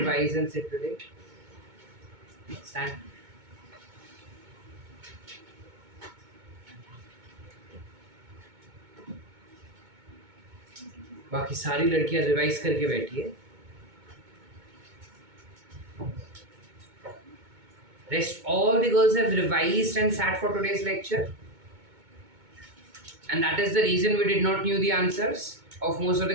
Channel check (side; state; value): left; late; 2.2 ms